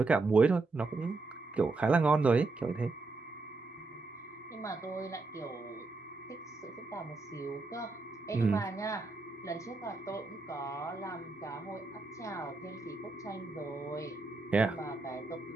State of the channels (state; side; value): quieter; left; 3.6 dB